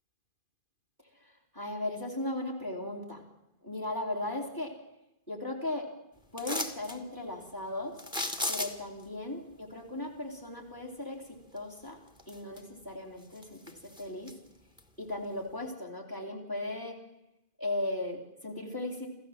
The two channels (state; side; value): late; left; 2.5 ms